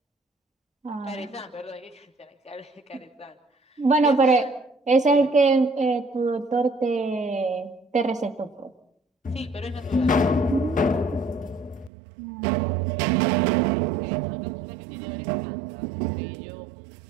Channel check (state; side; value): drops out; left; at 11.9 s